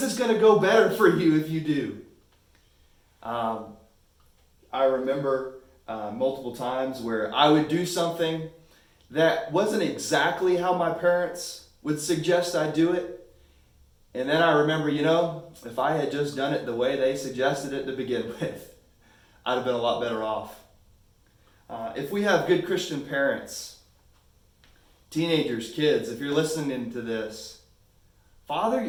it's going to go better for you if you do. I remember multiple times where I would do something that wasn't exactly how my parents would suggest I do it. And then I remember, if I had just done it the way they suggested it to begin with, I'd have been a lot better off. If we have good Christian parents, teenagers, kids, if you're listening to this,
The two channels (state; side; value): identical; both; correlation 1.00